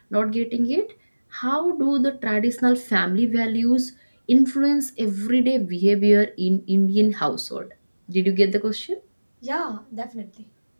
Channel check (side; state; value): both; inverted; correlation -1.00